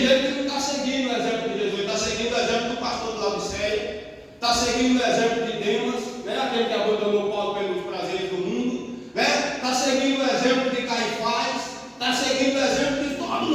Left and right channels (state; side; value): identical; both; correlation 1.00